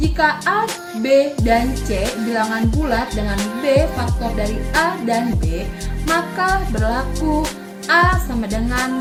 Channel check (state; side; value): identical; both; correlation 1.00